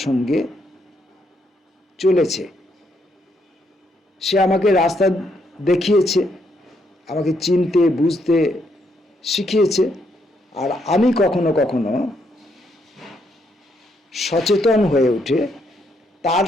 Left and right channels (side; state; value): both; normal; correlation 0.75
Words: সঙ্গে চলেছে। সে আমাকে রাস্তা দেখিয়েছে, আমাকে চিনতে বুঝতে শিখিয়েছে। আর আমি কখনো কখনো সচেতন হয়ে উঠে তার